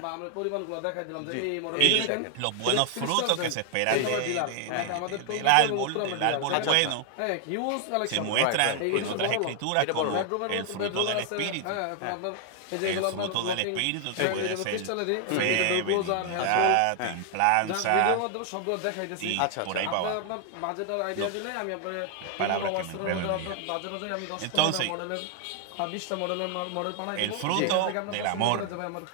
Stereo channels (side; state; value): both; different; correlation 0.00